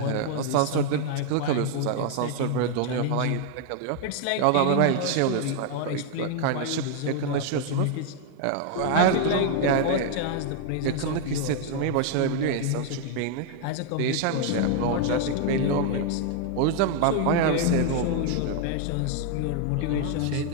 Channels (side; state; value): both; different; correlation 0.00